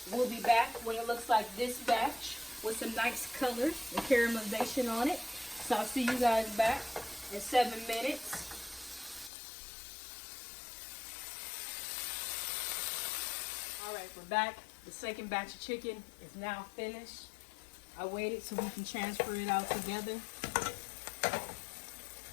We'll be back when it looks like this batch with some nice color and caramelization on it. So I'll see you guys back in 7 minutes. Alright, we're back. The second batch of chicken is now finished. I waited so we can transfer it out together.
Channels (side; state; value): right; drops out; at 9.3 s